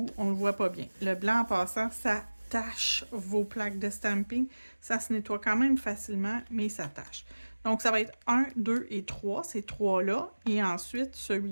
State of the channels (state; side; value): inverted; both; correlation -1.00